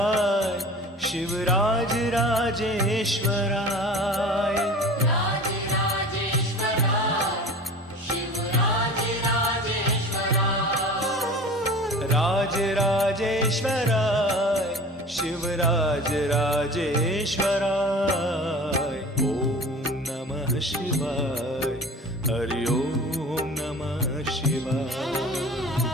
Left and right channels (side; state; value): both; normal; correlation 0.39